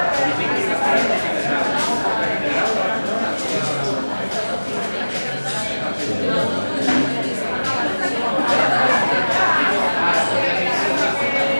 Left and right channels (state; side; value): inverted; both; correlation -1.00